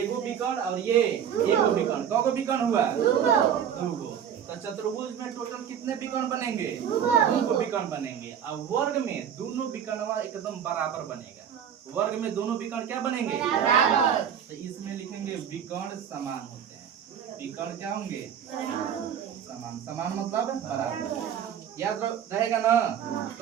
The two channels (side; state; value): left; quieter; 8.7 dB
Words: विकर्ण और ये एगो विकर्ण। कौ गो विकर्ण हुआ? 2 गो। तो चतुर्भुज में टोटल कितने विकर्ण बनेंगे? 2 गो विकर्ण बनेंगे। और वर्ग में दोनों विकर्ण एकदम बराबर बनेगा। वर्ग में दोनों विकर्ण क्या बनेंगे? बराबर। तो इसमें लिखेंगे विकर्ण समान होते हैं। विकर्ण क्या होंगे? समान। समान मतलब बराबर। याद रहेगा ना।